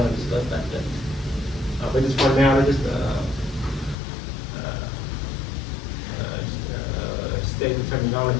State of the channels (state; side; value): drops out; right; at 4.0 s